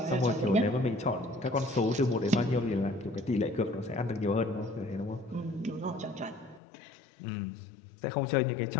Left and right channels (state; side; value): drops out; right; at 6.6 s